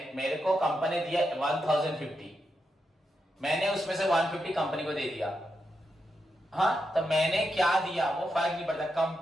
मेरे को कंपनी दिया 1050, मैंने उसमें से 150 कंपनी को दे दिया। हाँ, तो मैंने क्या दिया वो फर्क नहीं पड़ता,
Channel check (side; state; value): both; normal; correlation 0.85